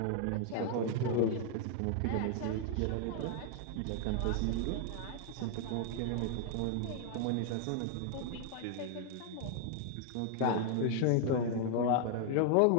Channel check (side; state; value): both; different; correlation 0.00